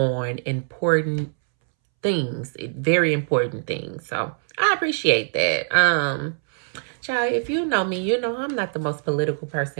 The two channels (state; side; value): silent; left; 63 dB below the other